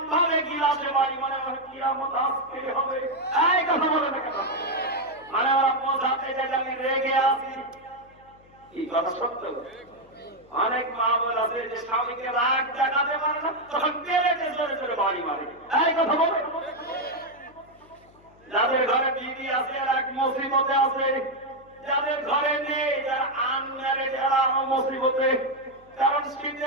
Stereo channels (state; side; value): noise; left; hum, 28 dB below the sound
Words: ভাবে গিলাসে বাড়ি মারে, কিয়ামত আজকে হবে। এই কথা বলে না কেন? মানে ওরা বোঝাতে চাই যে আমি রেগে আছি। কি কথা সত্য? অনেক মা বোন আছে যে স্বামীকে রাগ দেখাতে পারে না, তখন প্লেটে জোরে জোরে বাড়ি মারে। এই কথা বলে। যাদের ঘরে বিবি আছে আর এক মুসিবতে আছে, যাদের ঘরে নেই, যারা আনম্যারেড এরা মুসিবতে, কারণ